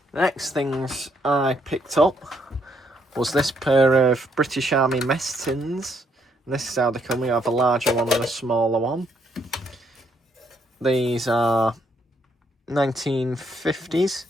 The next things I picked up was this pair of British Army Messins. This is how they come. We have a larger one and a smaller one. These are 1950s,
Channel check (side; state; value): both; normal; correlation 0.72